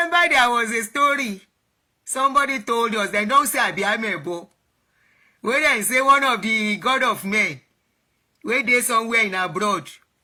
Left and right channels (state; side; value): identical; both; correlation 1.00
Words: there was a story. Somebody told us, they don't say Abiamebo. When they say one of the god of men, where they somewhere in abroad,